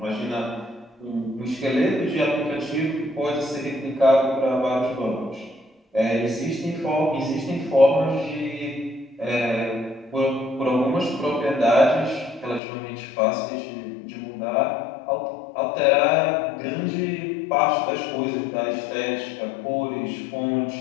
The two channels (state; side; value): drops out; right; at 12.6 s